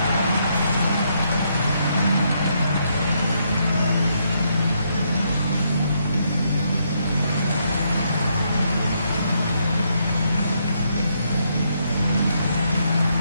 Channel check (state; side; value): inverted; both; correlation -0.76